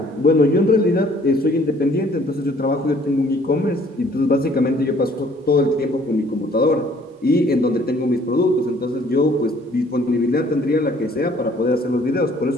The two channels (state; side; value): normal; both; correlation 0.58